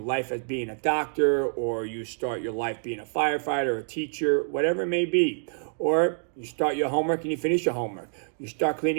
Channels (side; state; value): left; silent; digital silence